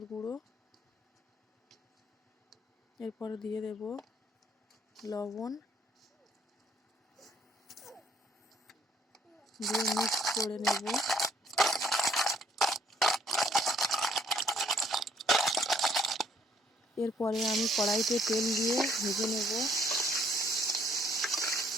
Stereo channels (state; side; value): normal; both; correlation 0.65